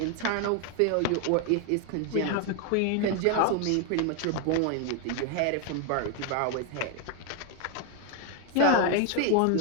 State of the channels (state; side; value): different; both; correlation 0.01